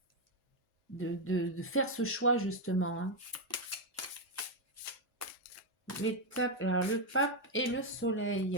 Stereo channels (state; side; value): normal; both; correlation 0.03